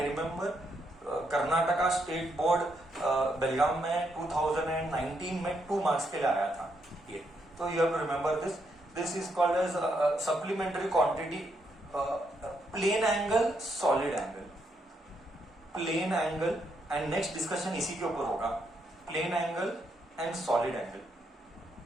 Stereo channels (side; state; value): both; normal; correlation 0.78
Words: remember, Karnataka state board Belgaum में 2019 में 2 मार्क्स के लिए आया था ये। तो you have to remember this. This is called as supplementary quantity, plane angle, solid angle, plane angle. And next discussion इसी के ऊपर होगा, plane angle and solid angle,